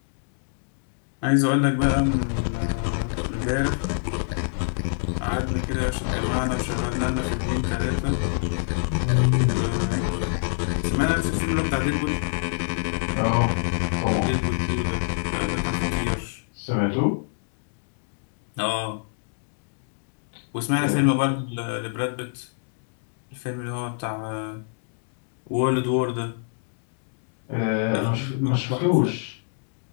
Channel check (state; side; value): silent; right; digital silence